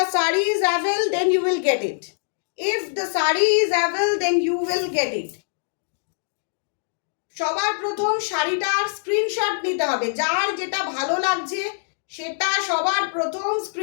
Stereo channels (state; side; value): silent; right; digital silence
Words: saree is available, then you will get it. If the saree is available, then you will get it. সবার প্রথম শাড়িটার screenshot নিতে হবে, যার যেটা ভালো লাগছে সেটা সবার প্রথম